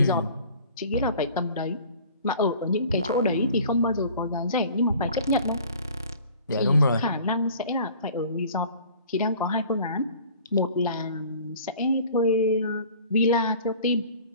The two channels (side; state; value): both; inverted; correlation -0.48